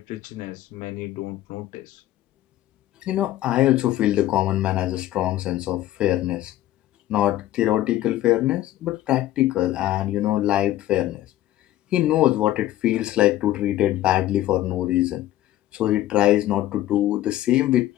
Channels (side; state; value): right; quieter; 14.1 dB